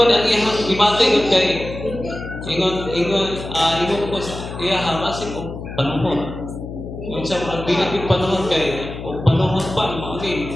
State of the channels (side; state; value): left; noise; hum, 10 dB below the sound